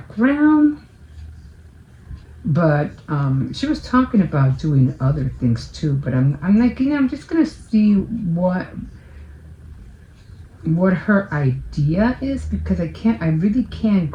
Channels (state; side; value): identical; both; correlation 1.00